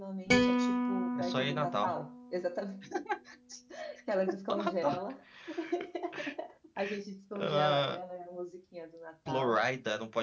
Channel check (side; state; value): both; identical; correlation 1.00